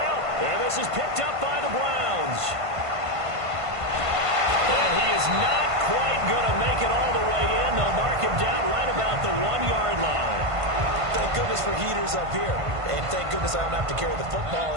And this is picked up by the Browns. And he is not quite going to make it all the way in. They'll mark him down right about the 1-yard line. Thank goodness for heaters up here. And thank goodness I don't have to carry the football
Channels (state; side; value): late; left; 1.5 ms